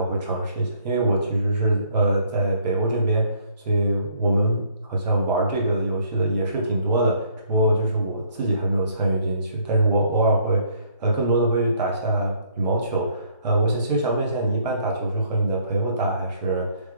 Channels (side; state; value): both; inverted; correlation -0.64